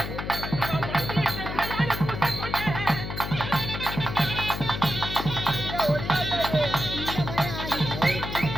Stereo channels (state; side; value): noise; left; hum, 6 dB below the sound